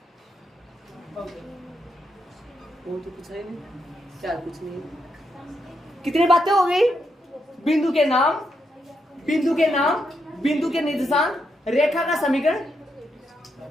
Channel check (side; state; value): both; normal; correlation 0.81